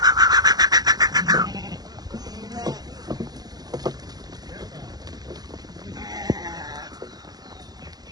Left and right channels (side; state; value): left; late; 0.19 ms